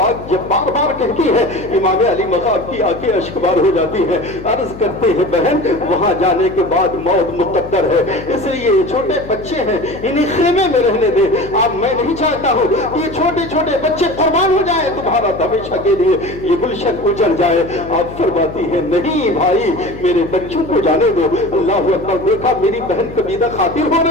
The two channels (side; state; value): left; noise; hum, 14 dB below the sound